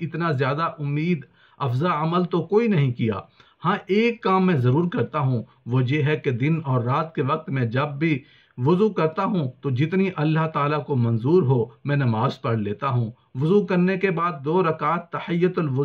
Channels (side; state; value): both; identical; correlation 1.00